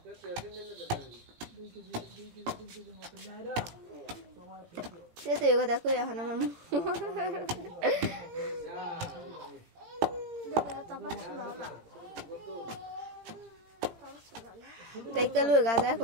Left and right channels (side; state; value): left; late; 17 ms